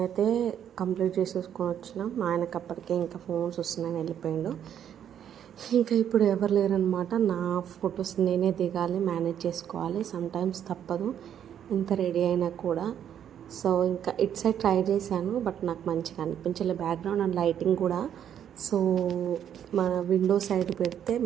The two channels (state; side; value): quieter; left; 9.5 dB